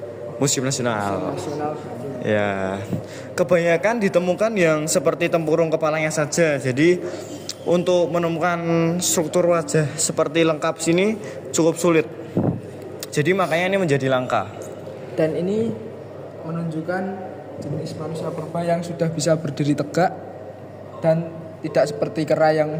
Museum Nasional. Nasional Bandung. Ya, kebanyakan ditemukan yang seperti tempurung kepalanya saja. Jadi untuk menemukan struktur wajah seperti lengkap sini cukup sulit. Jadi makanya ini menjadi langka. Dan ini menunjukkan jenis manusia purba yang sudah bisa berdiri tegak dan tidak seperti kera yang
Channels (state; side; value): identical; both; correlation 1.00